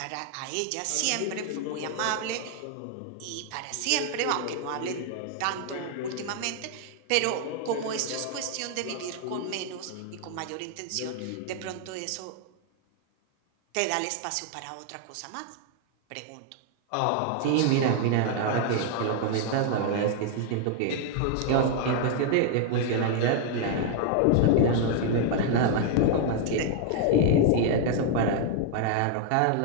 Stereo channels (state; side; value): different; both; correlation 0.00